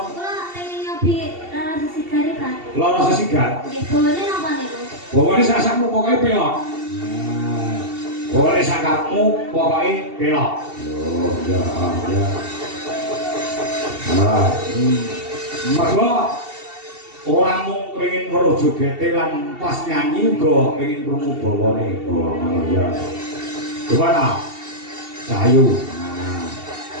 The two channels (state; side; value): late; left; 2.7 ms